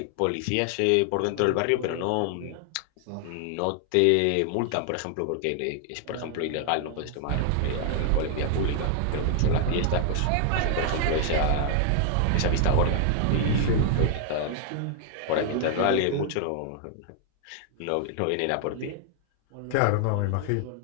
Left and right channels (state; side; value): different; both; correlation 0.00